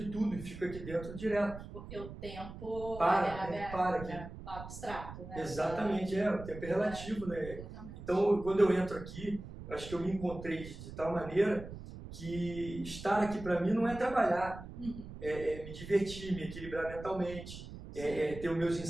tudo e fico aqui dentro direto. Porque o tempo para aqui. Abstrato, né? Exatamente, o tempo é relativo, né? Então, quando eu entro aqui, eu acho que eu me encontrei de tal maneira que estar aqui para mim não é trabalhar, é me divertir, me equilibrar mentalmente, ter os meus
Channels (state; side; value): noise; right; rumble, 12 dB below the sound